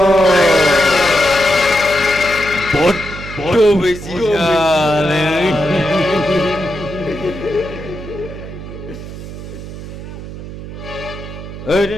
বড্ড বেশি জানে। এই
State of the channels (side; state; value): right; noise; hum, 11 dB below the sound